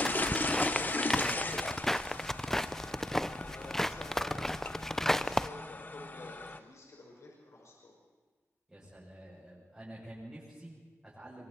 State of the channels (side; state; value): both; normal; correlation 0.78